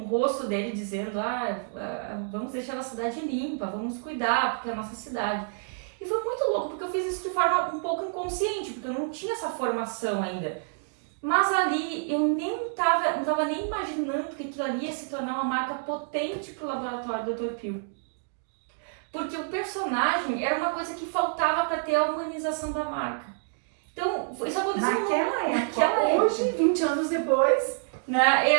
rosto dele, dizendo, vamos deixar a cidade limpa, vamos cuidar, porque é a nossa cidade. E foi muito louco, porque eu fiz isso de forma um pouco inconsciente, porque eu não tinha essa formação ainda. Mas ali eu não tava nem imaginando que aquilo ali ia se tornar uma marca potente pro laboratório do Dr. Pio. Porque o personagem era uma coisa que faltava para ter a humanização da marca. Então, isso aconteceu naquela época. Hoje, 20 anos depois, né,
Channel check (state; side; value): silent; left; digital silence